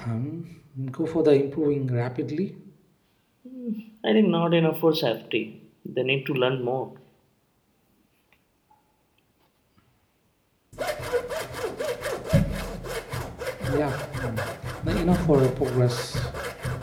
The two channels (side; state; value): both; identical; correlation 1.00